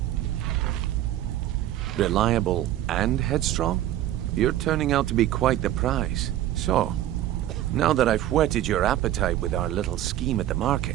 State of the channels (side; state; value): left; quieter; 13.0 dB